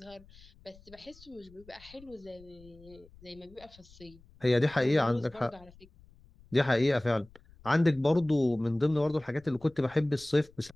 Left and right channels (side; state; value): left; noise; rumble, 25 dB below the sound